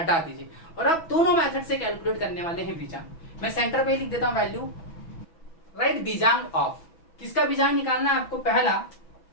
दीजिए। और आप दोनों मेथड से कैलकुलेट करने वाले हैं बीजांग। मैं सेंटर पे लिख देता हूं वैल्यू, राइट बीजांग ऑफ। किसका बीजांग निकालना है आपको, पहला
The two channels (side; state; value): right; late; 6.1 ms